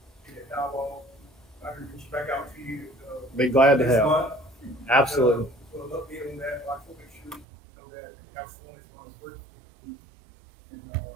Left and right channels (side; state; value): left; drops out; at 7.5 s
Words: get a dialogue. I can reach back out to you. Be glad to next help. month. Absolutely. For an update on that, I can make sure that the council is going to work. And I